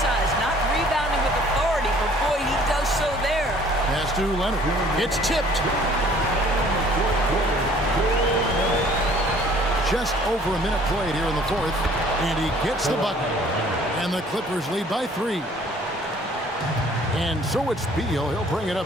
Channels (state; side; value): normal; both; correlation 0.55